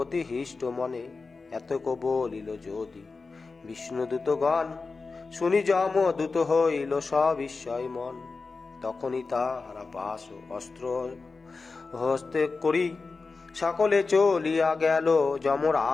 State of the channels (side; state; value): right; quieter; 4.2 dB